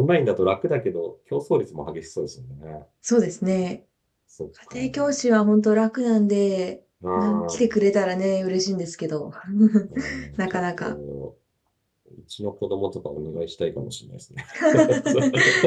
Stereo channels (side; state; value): both; identical; correlation 1.00